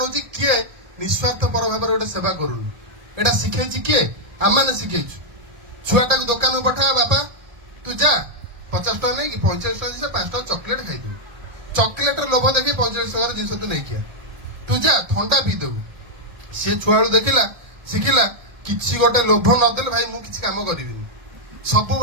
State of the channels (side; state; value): left; late; 1.7 ms